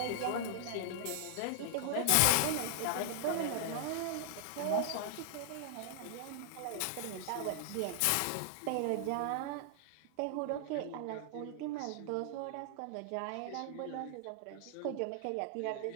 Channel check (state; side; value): different; both; correlation -0.01